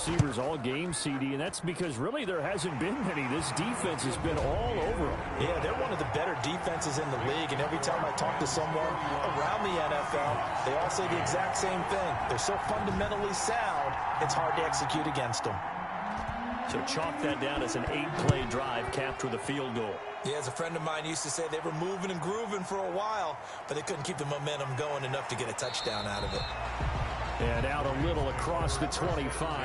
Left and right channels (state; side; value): identical; both; correlation 1.00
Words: all game, CD, and that's because really there hasn't been many. This defense has been all over him. Yeah, they're one of the better defenses in the league, and every time I talk to someone around the NFL, they all say the exact same thing. They're so fundamentally sound, it's hard to execute against them. So chalk that down as an 8-play drive capped with a field goal. Yeah, as a friend of mine used to say, they were moving and grooving for a while, but they couldn't keep the momentum going enough to get a touchdown out of it. And out a little across the